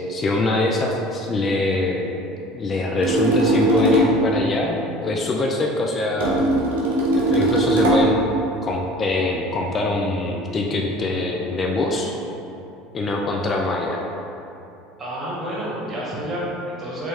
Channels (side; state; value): both; normal; correlation 0.46